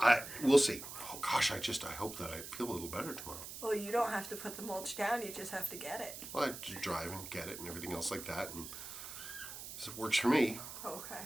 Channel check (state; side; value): noise; right; hiss, 10 dB below the sound